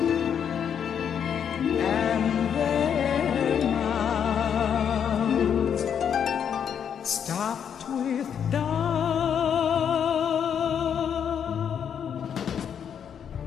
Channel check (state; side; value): quieter; right; 8.1 dB